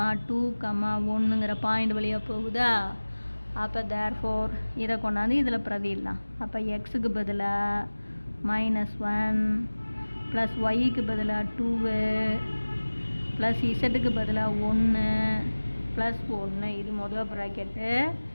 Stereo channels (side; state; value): both; inverted; correlation -1.00